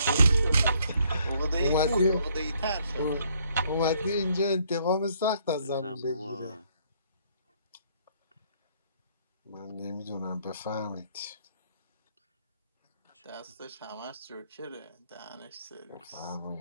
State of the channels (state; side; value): inverted; both; correlation -0.67